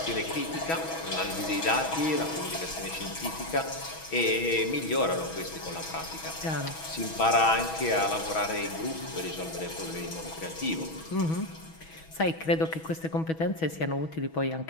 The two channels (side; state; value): right; late; 6.2 ms